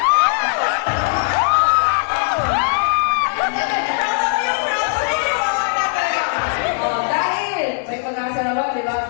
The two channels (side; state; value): right; silent; digital silence